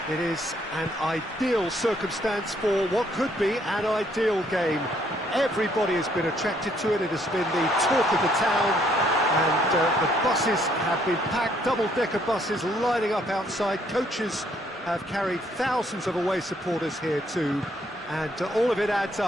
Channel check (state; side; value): normal; both; correlation 0.67